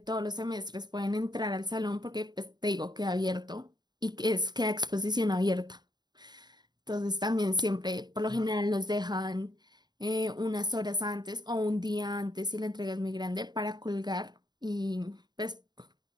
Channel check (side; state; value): left; late; 0.20 ms